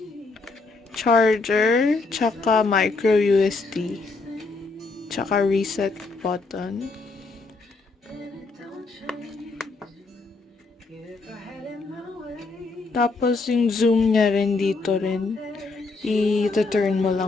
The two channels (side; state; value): right; quieter; 3.8 dB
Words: charger, tsaka micro USB, tsaka reset button. Tapos yung zoom niya rin dito rin, i-turn mo